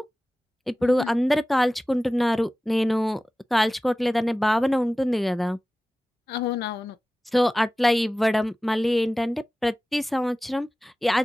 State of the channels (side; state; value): both; normal; correlation 0.96